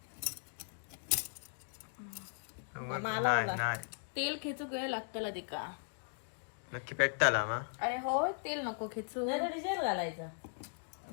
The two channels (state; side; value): silent; right; digital silence